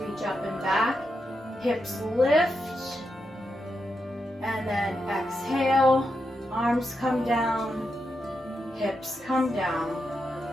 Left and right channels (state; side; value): normal; both; correlation 0.85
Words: reach up and back, hips lift, and then exhale, arms come down, hips come down.